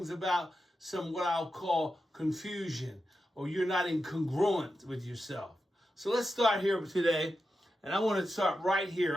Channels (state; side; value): normal; both; correlation 0.89